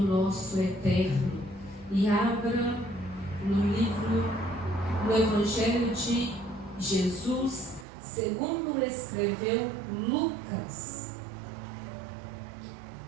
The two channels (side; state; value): left; drops out; at 7.9 s